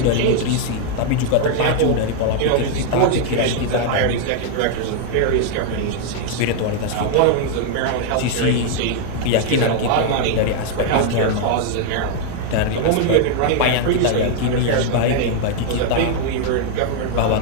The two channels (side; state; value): both; different; correlation 0.00